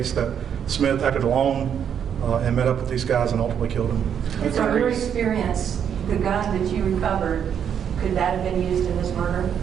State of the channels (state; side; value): quieter; left; 8.3 dB